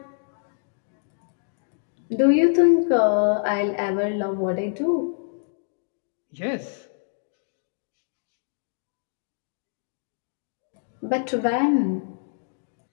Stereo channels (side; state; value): right; silent; digital silence